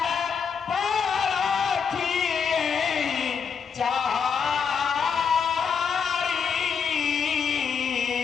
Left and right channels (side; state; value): right; quieter; 6.4 dB